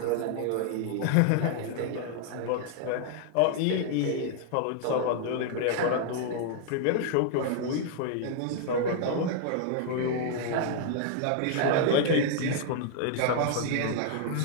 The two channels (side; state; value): both; different; correlation -0.01